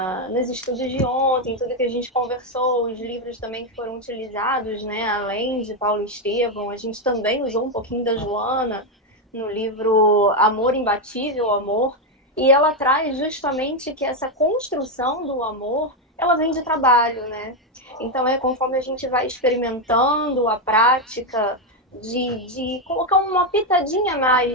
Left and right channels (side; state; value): both; normal; correlation 0.05